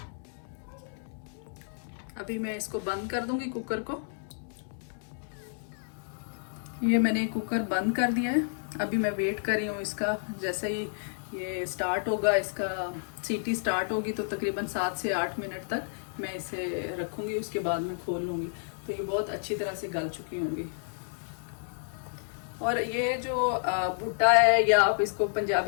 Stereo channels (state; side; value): silent; right; digital silence